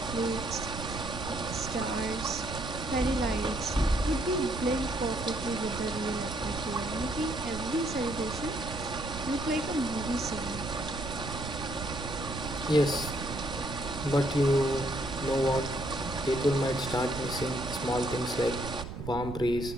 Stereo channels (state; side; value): noise; right; rumble, 8 dB below the sound